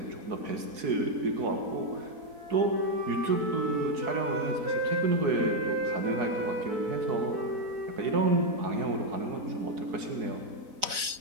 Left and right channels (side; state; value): left; late; 4.0 ms